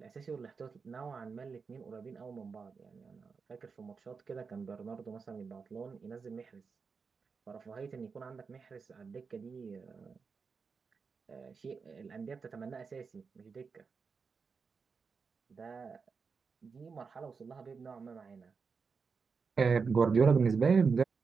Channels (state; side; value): quieter; left; 5.2 dB